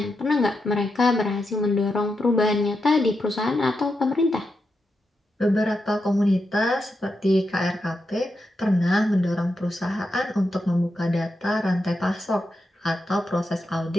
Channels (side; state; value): both; normal; correlation 0.86